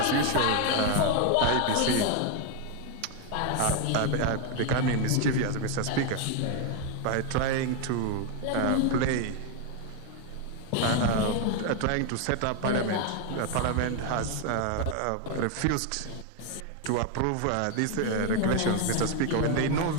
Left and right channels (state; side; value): different; both; correlation 0.01